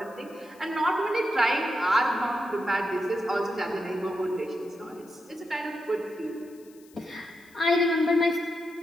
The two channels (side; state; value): left; noise; hiss, 28 dB below the sound